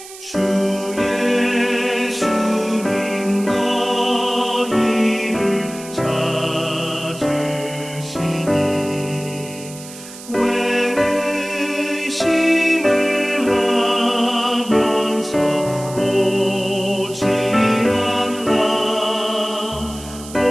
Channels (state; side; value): noise; right; hiss, 15 dB below the sound